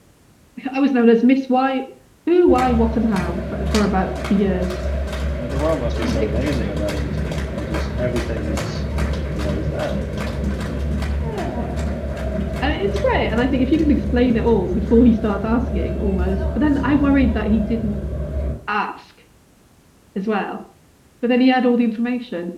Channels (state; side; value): identical; both; correlation 1.00